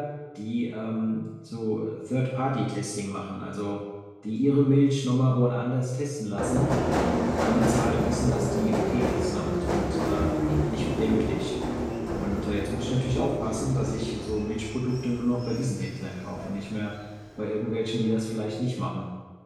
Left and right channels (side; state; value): both; identical; correlation 1.00